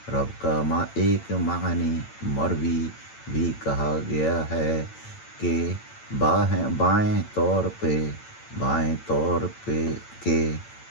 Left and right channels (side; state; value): right; late; 8.9 ms